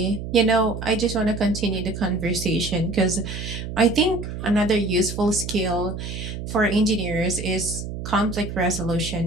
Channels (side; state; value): right; noise; hum, 7 dB below the sound